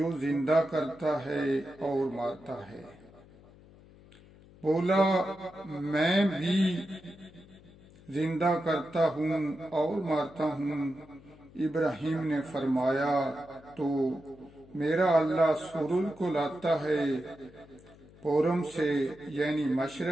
زندہ کرتا ہے اور مارتا ہے. بولا میں بھی زندہ کرتا ہوں اور مارتا ہوں. ابراہیم نے فرمایا تو میرا اللہ سورج کو لاتا ہے پورم سے یعنی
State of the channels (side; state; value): left; noise; hum, 23 dB below the sound